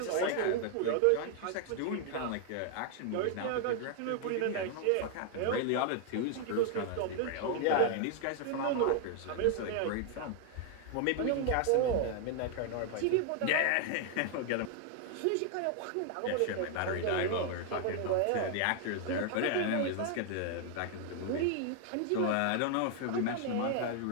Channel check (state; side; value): different; both; correlation 0.00